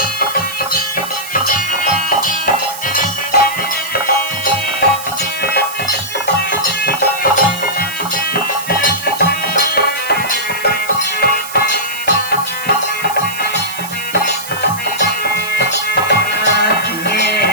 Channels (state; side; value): noise; right; hiss, 11 dB below the sound